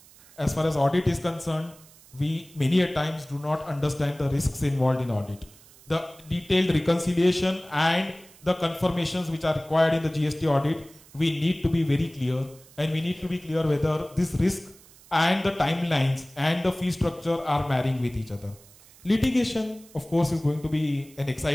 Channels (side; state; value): right; noise; hiss, 24 dB below the sound